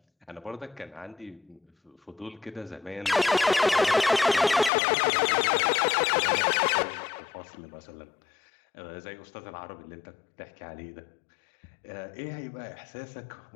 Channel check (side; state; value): right; drops out; at 4.7 s